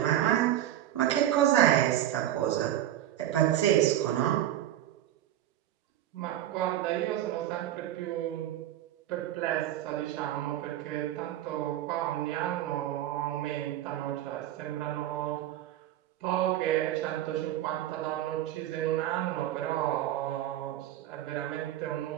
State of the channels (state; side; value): quieter; left; 12.6 dB